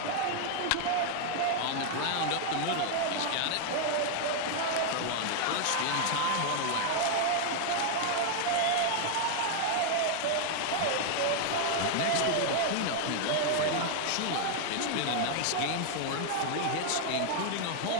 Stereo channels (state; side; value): different; both; correlation 0.00